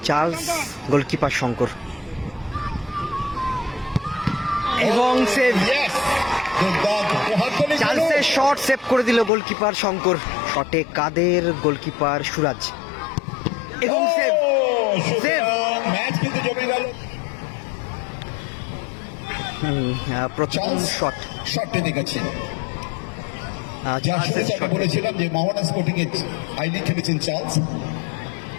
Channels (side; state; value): right; drops out; at 9.3 s